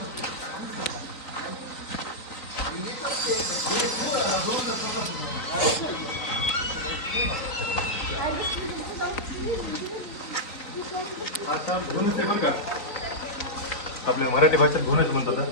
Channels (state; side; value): late; right; 3.9 ms